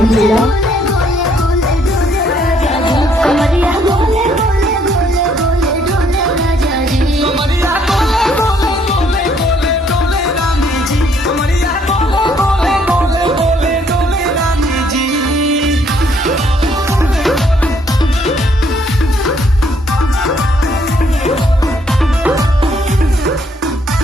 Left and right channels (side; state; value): both; normal; correlation 0.67